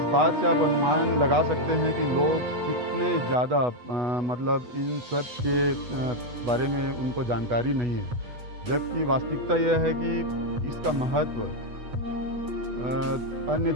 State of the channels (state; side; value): late; left; 8.2 ms